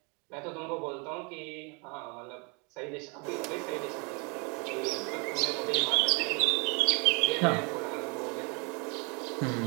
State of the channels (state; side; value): quieter; left; 32.3 dB